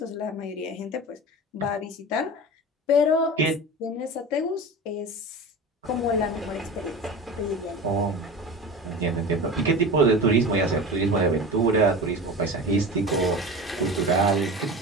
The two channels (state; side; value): normal; both; correlation 0.31